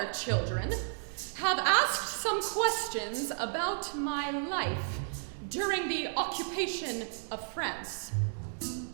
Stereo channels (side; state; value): left; silent; digital silence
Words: children, have asked some questions about my life during the occupation of France.